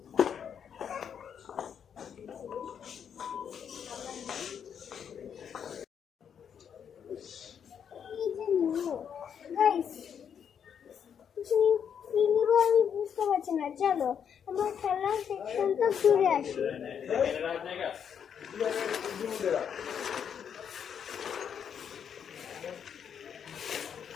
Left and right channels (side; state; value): right; quieter; 7.9 dB